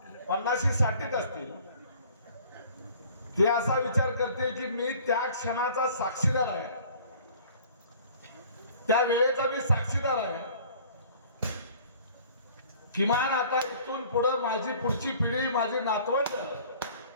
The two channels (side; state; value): both; inverted; correlation -0.51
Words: 50-60 असतील, ते असा विचार करते की मी त्या क्षणाचा साक्षीदार आहे, त्या वेळेचा मी साक्षीदार आहे। किमान आता इथून पुढे माझी पुढची पिढी, माझी नातवंड